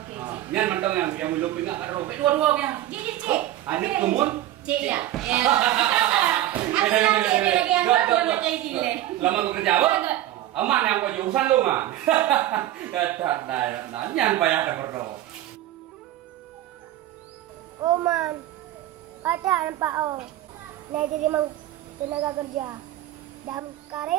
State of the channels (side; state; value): left; quieter; 14.0 dB